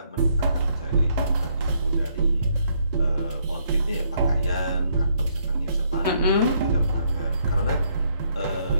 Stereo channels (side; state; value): both; inverted; correlation -0.72